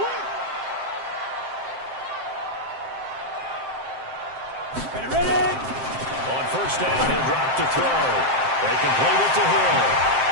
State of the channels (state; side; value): late; left; 7.6 ms